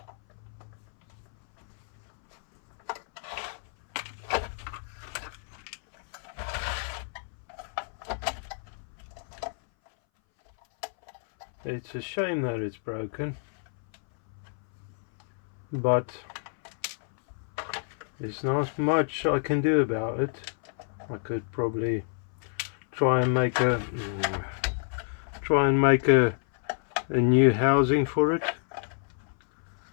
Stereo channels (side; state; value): right; silent; 59 dB below the other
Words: It's a shame that it's broken, but there's not much I can do about it. I could probably try and make a new housing for it,